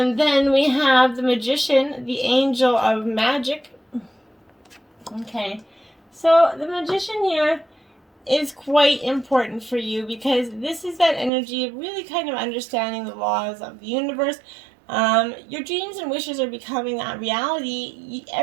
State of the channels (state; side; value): drops out; left; at 11.3 s